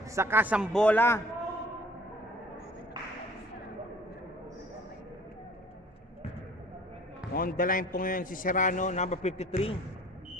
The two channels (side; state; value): both; normal; correlation 0.51